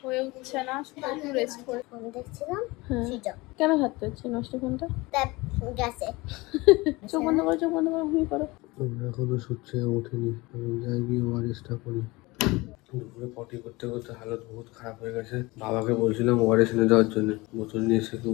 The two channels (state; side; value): quieter; right; 22.7 dB